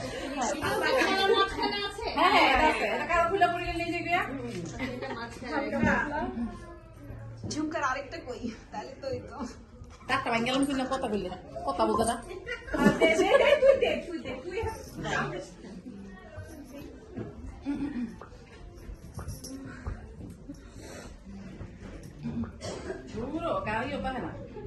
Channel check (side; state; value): both; identical; correlation 1.00